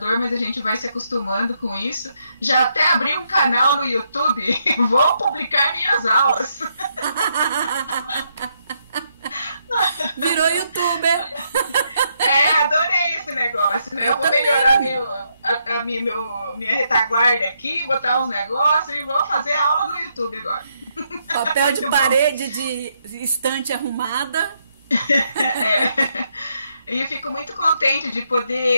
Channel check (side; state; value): both; inverted; correlation -0.77